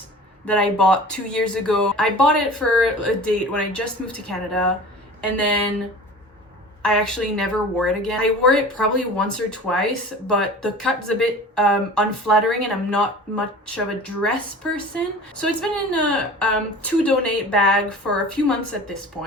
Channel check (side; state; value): both; normal; correlation 0.39